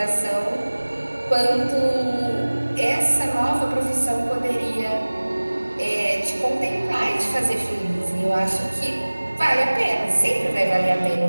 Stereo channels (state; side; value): inverted; both; correlation -1.00